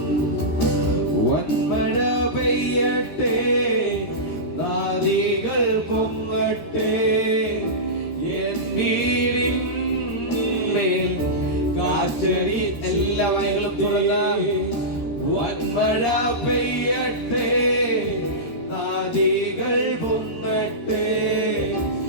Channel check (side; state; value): right; late; 13 ms